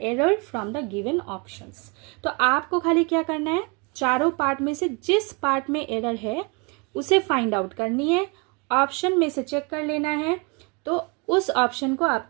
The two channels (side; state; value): left; quieter; 31.0 dB